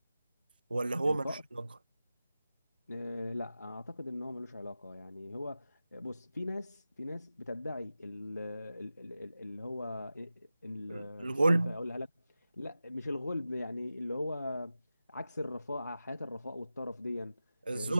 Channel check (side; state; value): both; inverted; correlation -0.93